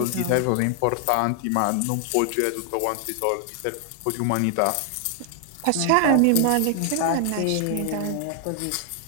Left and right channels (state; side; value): different; both; correlation 0.00